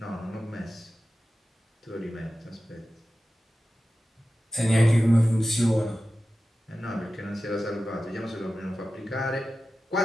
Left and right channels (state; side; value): normal; both; correlation 0.94